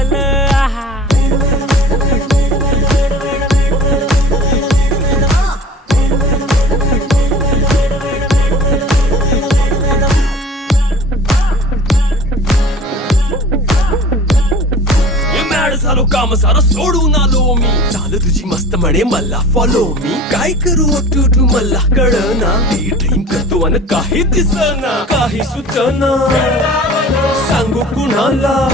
झालो काम सारं सोडून आलो मी चाल तुझी मस्त म्हणे मला फॉलो मी काय करू टू मला कळना ती ड्रीम करतो आणि काही दिसना काही सुचना सांगू कुणाला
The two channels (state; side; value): normal; both; correlation 0.43